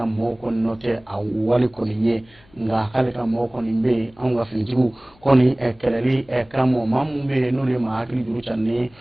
mɔgɔw kɔni nɔ tɛ a wale kɔni ye nka k'ale ka mɔgɔw kɔni bɛ yen anw ka finitigiw kɔni kɛlɛli kama maa mun bɛ yen n'olu ye maa hakili juru caani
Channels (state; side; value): noise; left; hum, 29 dB below the sound